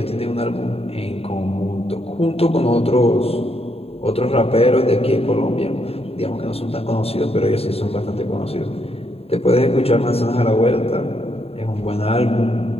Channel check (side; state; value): right; late; 0.29 ms